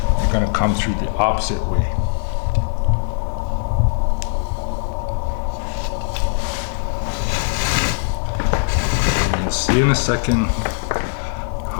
you're going to come through the opposite way. See in a second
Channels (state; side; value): silent; right; 55 dB below the other